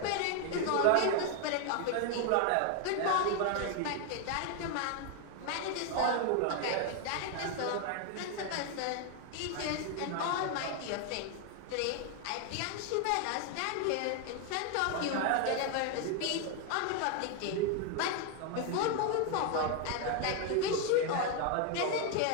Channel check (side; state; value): both; different; correlation 0.01